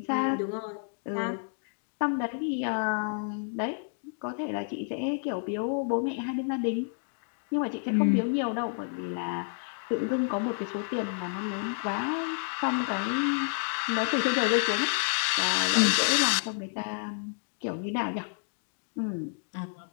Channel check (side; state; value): right; silent; digital silence